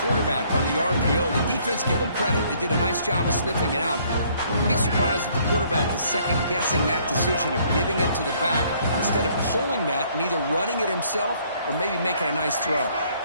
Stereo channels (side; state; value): both; inverted; correlation -0.63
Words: quarterback on the RPO. The defense, give them credit. They did a nice job of sniffing it out. I'd be surprised if the quarterback is second-guessing that decision of giving it to the back instead of pulling that and either running it himself or maybe making a nice throw.